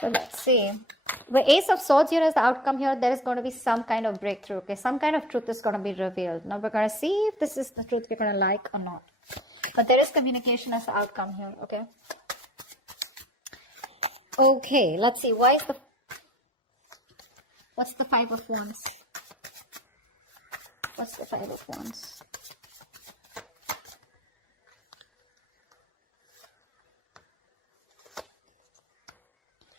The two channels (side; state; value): both; normal; correlation 0.43